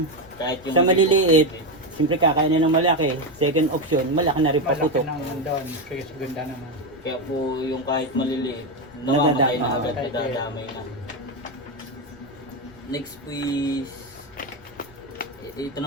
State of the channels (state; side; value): noise; left; rumble, 25 dB below the sound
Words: Kahit yung sa maliliit, siyempre kakainin ng malaki, second option, malaki na rin Malaki paputok. naman doon, kaya ganda naman. Kaya po yung kahit maliliit, namamatay na agad, Nadadamay. nadadamay na. Next po is, ito